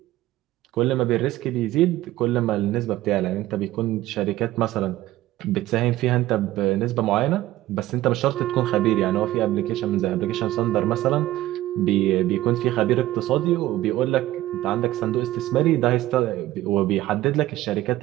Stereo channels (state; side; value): quieter; left; 15.5 dB